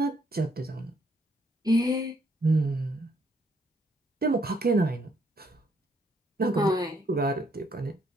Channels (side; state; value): both; normal; correlation 0.71